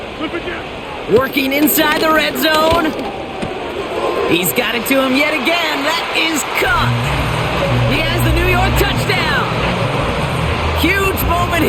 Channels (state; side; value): identical; both; correlation 1.00